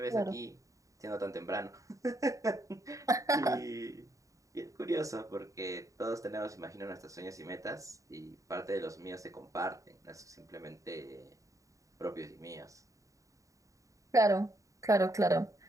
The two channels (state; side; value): late; left; 0.16 ms